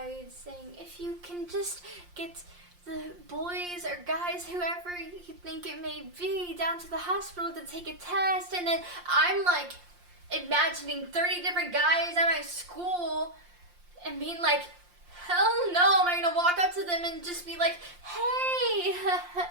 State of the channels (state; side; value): late; left; 5.7 ms